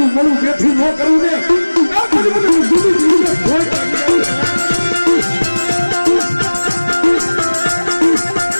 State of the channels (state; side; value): inverted; both; correlation -1.00